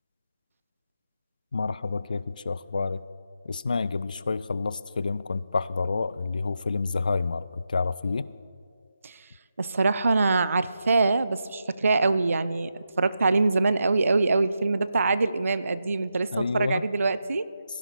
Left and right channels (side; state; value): both; inverted; correlation -0.86